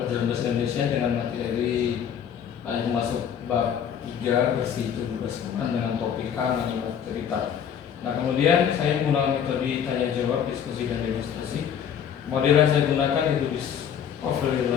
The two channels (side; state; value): right; quieter; 8.4 dB